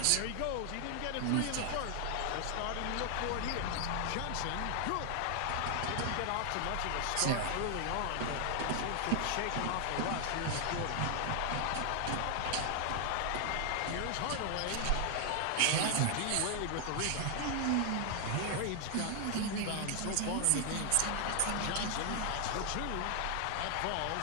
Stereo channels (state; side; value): different; both; correlation 0.00